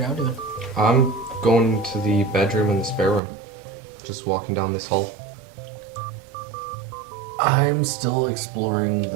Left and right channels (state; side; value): drops out; left; at 3.2 s